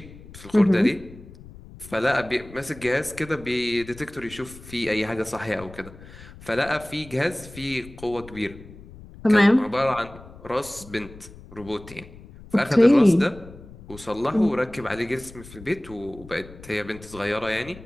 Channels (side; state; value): left; noise; rumble, 18 dB below the sound